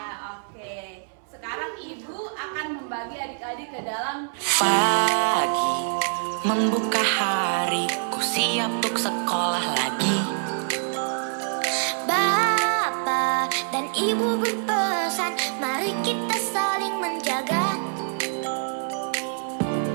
oke. Sekarang ibu akan membagi adik-adik ke dalam pagi membuka hari, ku siap untuk sekolah lagi. Bapak dan ibu berpesan, mari kita saling menjaga.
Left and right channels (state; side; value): silent; left; 62 dB below the other